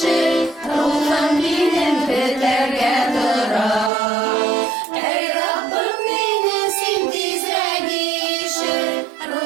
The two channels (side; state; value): left; drops out; at 3.9 s